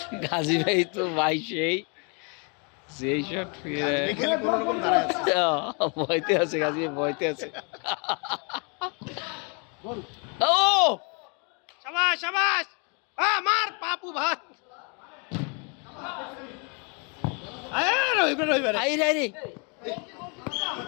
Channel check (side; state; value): right; quieter; 35.0 dB